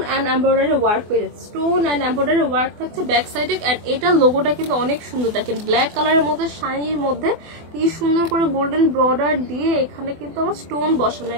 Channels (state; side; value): late; left; 24 ms